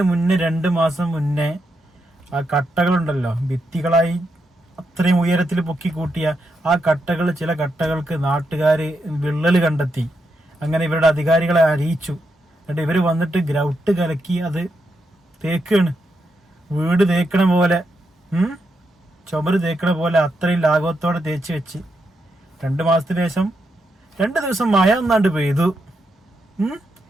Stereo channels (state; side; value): normal; both; correlation 0.83